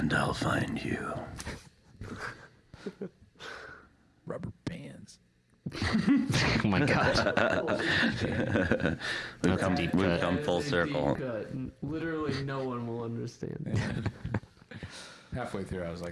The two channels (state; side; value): identical; both; correlation 1.00